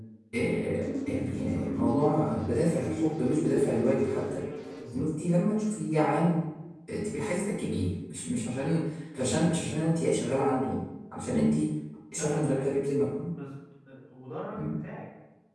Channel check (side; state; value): both; identical; correlation 1.00